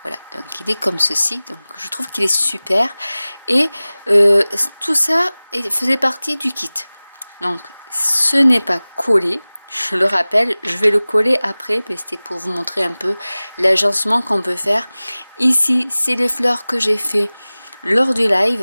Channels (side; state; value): both; inverted; correlation -0.99